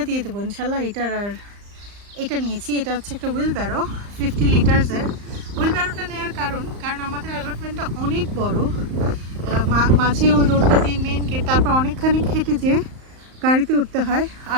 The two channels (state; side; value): late; left; 35 ms